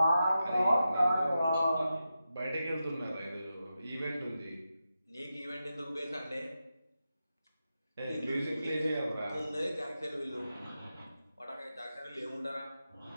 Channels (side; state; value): both; inverted; correlation -0.90